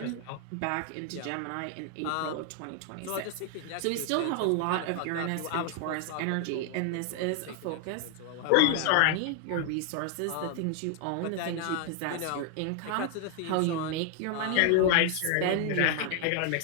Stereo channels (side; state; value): both; different; correlation 0.00